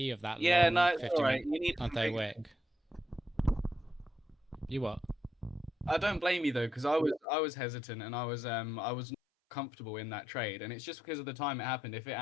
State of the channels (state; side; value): drops out; right; at 7.2 s